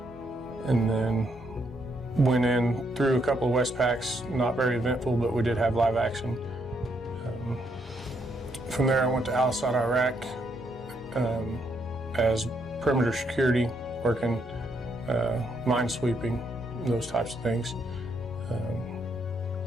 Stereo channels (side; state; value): both; normal; correlation 0.75